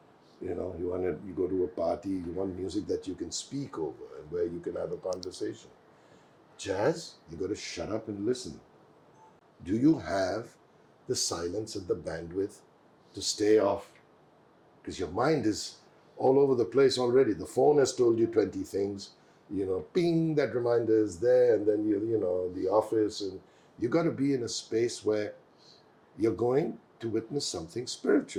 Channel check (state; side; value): identical; both; correlation 1.00